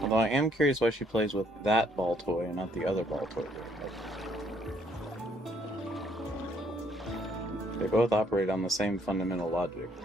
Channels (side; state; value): both; normal; correlation 0.67